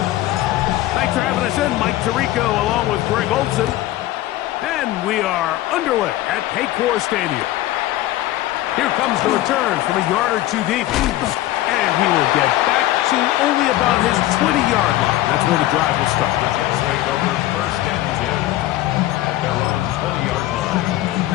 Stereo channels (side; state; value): right; quieter; 15.5 dB